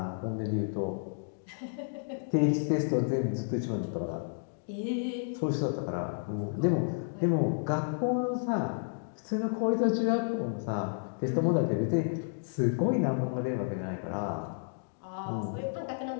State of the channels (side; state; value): right; silent; digital silence